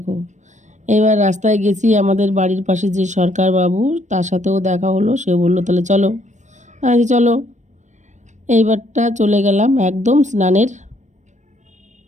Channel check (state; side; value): late; left; 0.35 ms